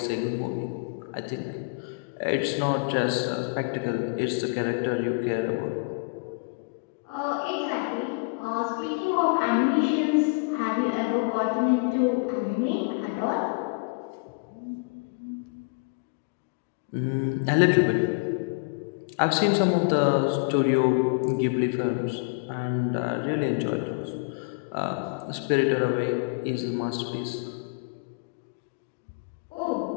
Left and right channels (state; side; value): quieter; right; 35.2 dB